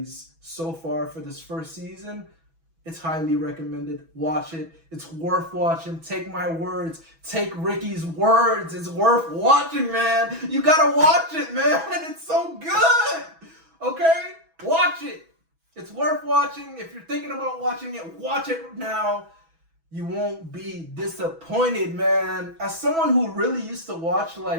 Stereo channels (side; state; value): left; late; 6.1 ms